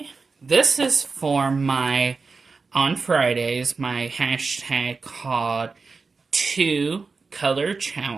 this is for my, on Fridays, my hashtag called 2 Color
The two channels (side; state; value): left; quieter; 4.4 dB